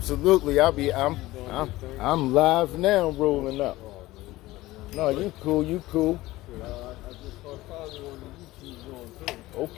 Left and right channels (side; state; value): right; quieter; 17.9 dB